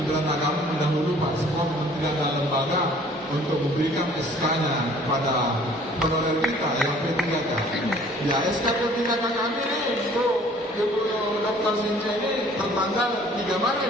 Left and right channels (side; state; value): both; normal; correlation 0.54